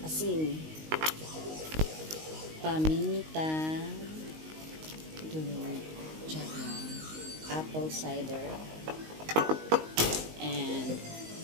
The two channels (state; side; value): late; left; 19 ms